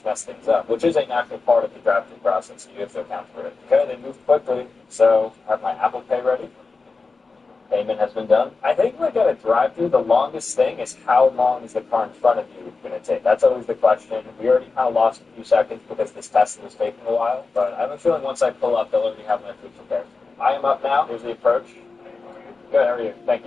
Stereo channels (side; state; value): right; quieter; 4.1 dB